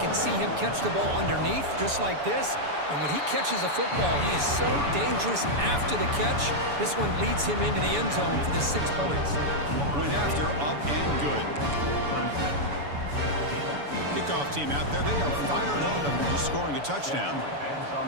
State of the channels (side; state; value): left; late; 7.0 ms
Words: see him catch the ball underneath, just like this. And when he catches a football, he is so dangerous after the catch. This one leads him into the end zone for the 6 points. Point after, up and good. Kickoff team out there, they are fired up after just scoring a touchdown.